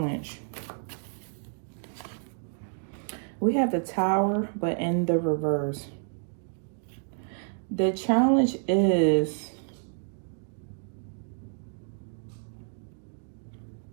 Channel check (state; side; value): silent; left; 58 dB below the other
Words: We have the Tower, but in the reverse. The challenge is